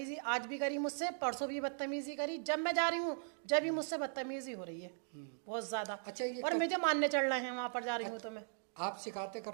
आज भी करी मुझसे, परसों भी बदतमीजी करी। जब मैं जा रही हूँ जब भी मुझसे बदतमीजी हो रही है बहुत ज्यादा। अच्छा, और मुझे मानने चढ़ रहे हैं वहाँ पर जा रही हूँ तो मैं। आप शिकायतें कर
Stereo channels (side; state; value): left; silent; digital silence